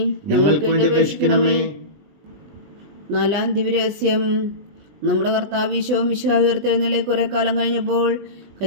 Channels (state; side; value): late; left; 20 ms